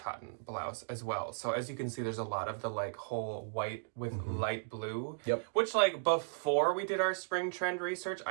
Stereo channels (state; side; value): silent; left; digital silence